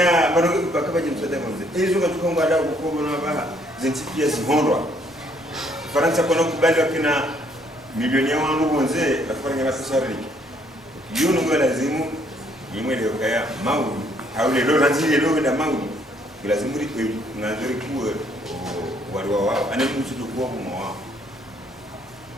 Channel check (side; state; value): both; normal; correlation 0.67